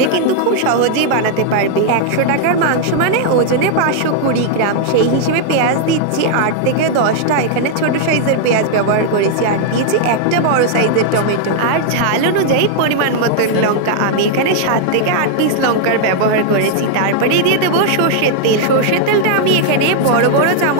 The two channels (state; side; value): different; both; correlation -0.01